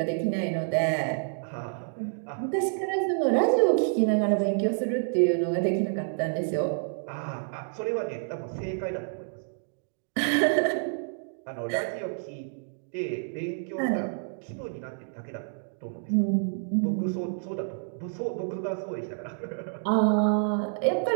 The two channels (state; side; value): silent; left; digital silence